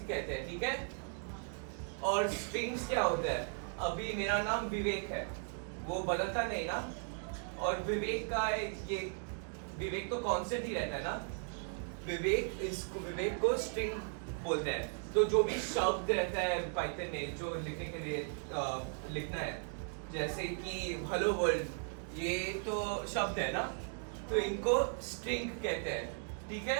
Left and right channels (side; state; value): left; silent; 53 dB below the other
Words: कहते हैं, ठीक है। और स्ट्रिंग्स क्या होता है, अभी मेरा नाम विवेक है, वो बदलता नहीं ना, और विवेक का ये विवेक तो कांस्टेंट ही रहता है ना, विवेक को स्ट्रिंग बोलते हैं। तो जो भी शब्द रहता है पाइथन में जो लिखने के लिए लिखना है, जैसे कि हेलो वर्ल्ड, ये तो शब्द है ना, तो इनको स्ट्रिंग कहते हैं, ठीक